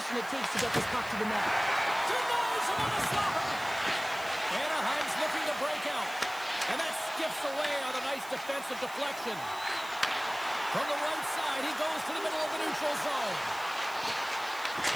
it takes to get this puck to the net. Denies him on a slapper. Anaheim's looking to break out. And that skips away on a nice defensive deflection. From the right side, he goes to the middle of the neutral zone.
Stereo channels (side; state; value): right; noise; hiss, 17 dB below the sound